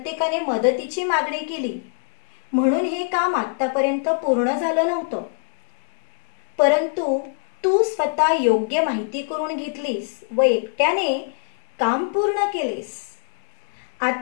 मदतीची मागणी केली, म्हणून हे काम आतापर्यंत पूर्ण झालं नव्हतं. परंतु तू स्वतः योग्य माहिती करून घेतलीस व एकट्याने काम पूर्ण केलेस.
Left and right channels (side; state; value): right; silent; digital silence